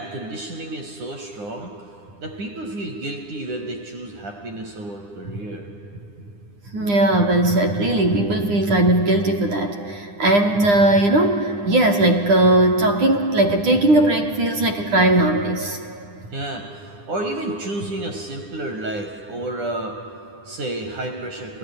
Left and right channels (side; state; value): left; late; 9.9 ms